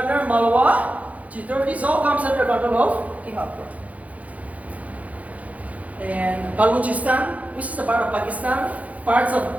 Malwa, Chittor, this all comes under control of King Akbar. And Balochistan, which is a part of Pakistan, parts of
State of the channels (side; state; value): left; late; 0.070 ms